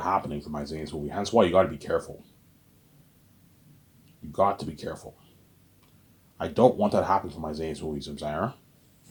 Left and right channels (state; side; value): identical; both; correlation 1.00